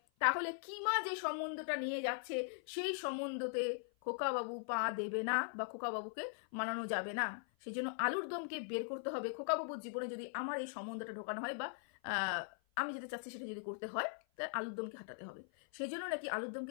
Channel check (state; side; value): silent; right; 51 dB below the other